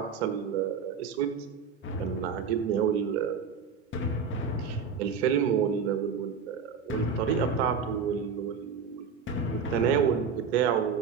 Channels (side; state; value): left; quieter; 5.9 dB